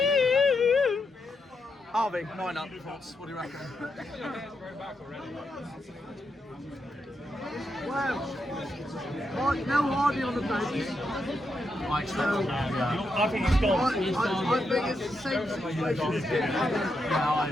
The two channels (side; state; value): both; normal; correlation 0.83